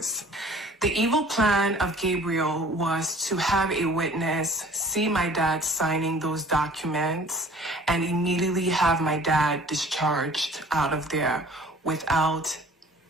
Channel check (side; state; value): both; normal; correlation 0.49